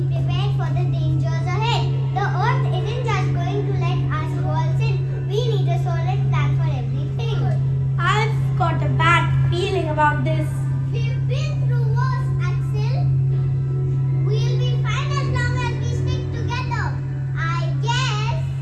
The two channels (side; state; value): both; identical; correlation 1.00